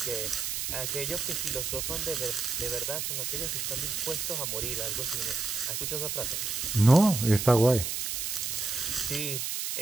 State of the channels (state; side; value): noise; right; hiss, 2 dB below the sound